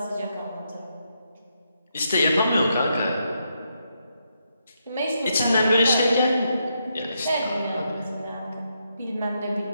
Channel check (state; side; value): inverted; both; correlation -0.80